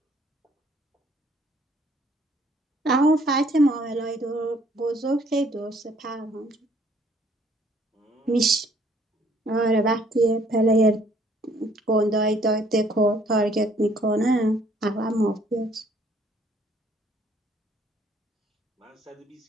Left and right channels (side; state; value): both; normal; correlation 0.62